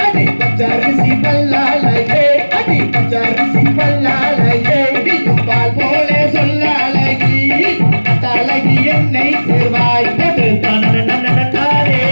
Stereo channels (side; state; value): both; inverted; correlation -1.00